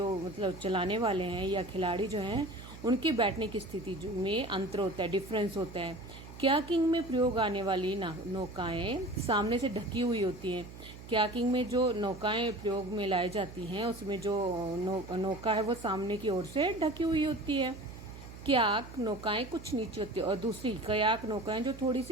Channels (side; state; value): right; noise; hum, 15 dB below the sound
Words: मतलब चलाने वाले हैं या खिलाड़ी जो हैं, उनके बैठने की स्थिति में अंतर होता है, डिफरेंस होता है। कयाकिंग में प्रयोग आने वाली नौकाएं सामने से ढकी हुई होती हैं। कयाकिंग में जो नौकाएं प्रयोग में लाई जाती हैं, उसमें जो नौका है वो सामने की ओर से ढकी हुई होती है। कयाक नौकाएं कुछ नीचे होती है और दूसरी कयाक नौकाएं जो थोड़ी